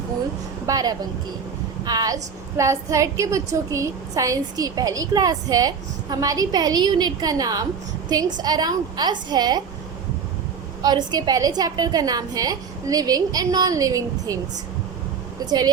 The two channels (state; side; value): quieter; left; 6.3 dB